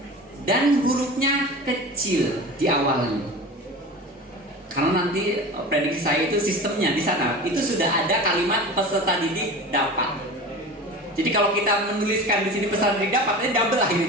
Dan hurufnya kecil di awalnya. Karena nanti prediksi saya itu sistemnya di sana itu sudah ada kalimat peserta didik dapat. Jadi kalau kita menuliskan di sini peserta didik dapat, ini double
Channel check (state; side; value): normal; both; correlation 0.33